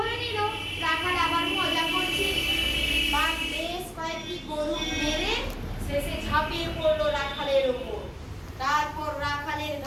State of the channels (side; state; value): both; identical; correlation 1.00